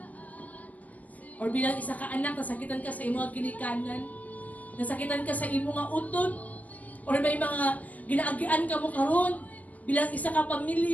Or bilang isa ka anak, nasakitan ka sa imong ginikanan? Nasakitan ka sa imong mga utod? Or may mga ginaagian ka mo karon bilang isa ka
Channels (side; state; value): right; late; 0.073 ms